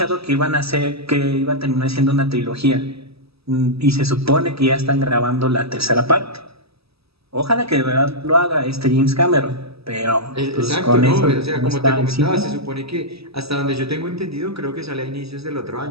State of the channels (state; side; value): late; left; 0.78 ms